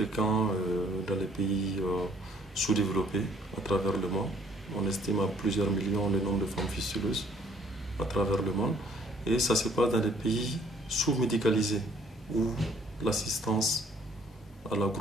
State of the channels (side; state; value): both; normal; correlation 0.61